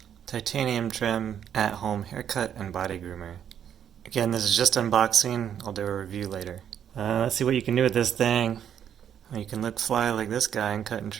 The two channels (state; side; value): quieter; left; 9.2 dB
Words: Titanium Trim at-home haircut and body groomer. Again, this is just unboxing. I'll do a review later. Let's see what you can do with this thing. You can look fly like this guy and cut and